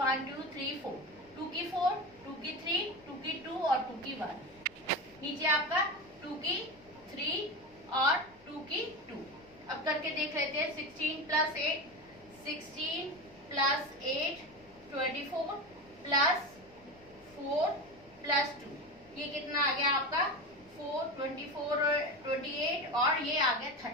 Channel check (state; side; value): noise; left; rumble, 28 dB below the sound